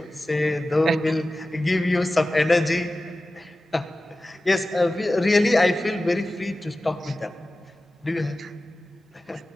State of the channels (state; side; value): normal; both; correlation 0.95